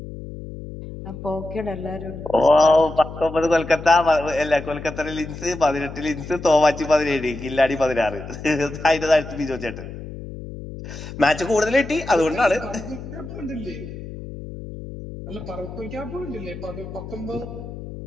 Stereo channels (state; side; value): noise; left; hum, 11 dB below the sound